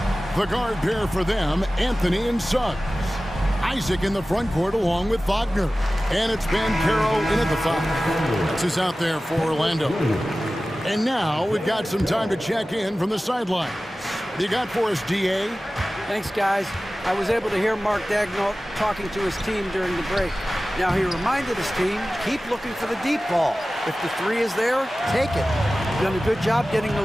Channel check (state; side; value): normal; both; correlation 0.96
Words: The guard pair for them, Anthony and Suggs. Isaac in the front court along with Wagner. And it's Banchero in at the foul. That's who's out there for Orlando. And now we've got some time to check in from the sidelines. You got for us, DA? Thanks, guys. I was able to hear Mark Daigneault talking to his team during the break. Now, he reminded his team, keep looking for the deep ball. If the 3 is there, take it. You've done a good job getting